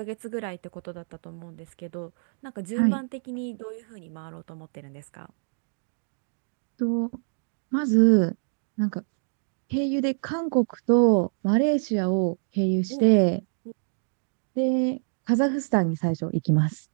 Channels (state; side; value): silent; left; digital silence